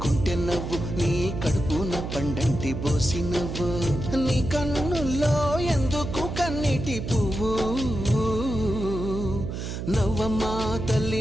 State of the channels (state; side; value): noise; right; hum, 5 dB below the sound